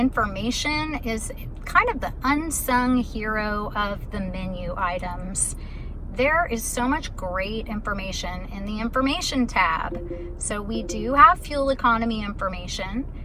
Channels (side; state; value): both; identical; correlation 1.00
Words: is kind of the unsung hero of the menu items. There is so much great information in the information tab. So we do have fuel economy information.